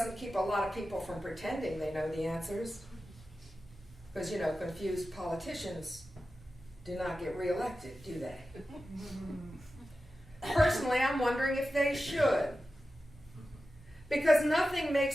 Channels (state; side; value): normal; both; correlation 0.93